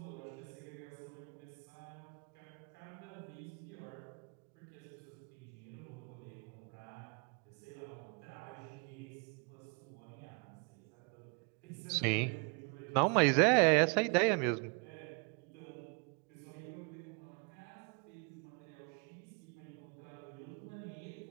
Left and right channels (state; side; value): quieter; left; 35.7 dB